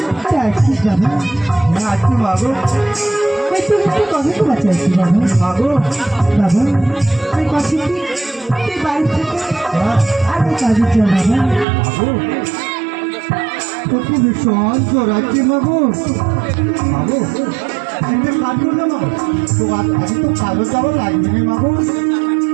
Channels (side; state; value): left; drops out; at 11.7 s